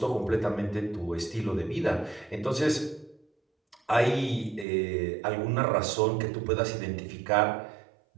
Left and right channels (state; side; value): drops out; left; at 4.7 s